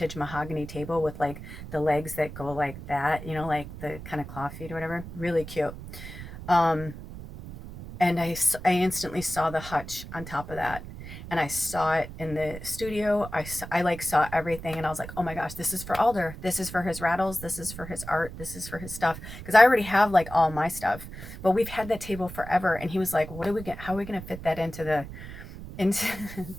mahogany table with like the legs that go like that, you know, like the kind of claw feet or whatever. Really cute. Um, and I instantly saw the hutch on top of that. And I saw it in the studio. I like saw everything, and I was like, oh my gosh, this is for Alder. This is for his rattles. This is for his art. This is for his stuff. Because I already have like all my stuff, but we've had that table forever. And he was like, what are we get? How are we gonna fit that into the into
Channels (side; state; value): right; noise; rumble, 12 dB below the sound